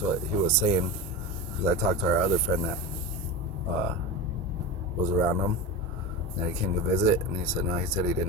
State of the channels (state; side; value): normal; both; correlation 0.24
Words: what he was saying. Because I talked to our other friend that was around him, and he came to visit, and he said no, he said he